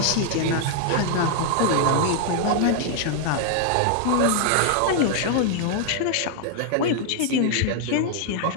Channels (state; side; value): different; both; correlation 0.00